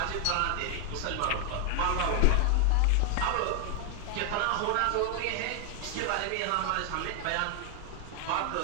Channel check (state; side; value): different; both; correlation 0.00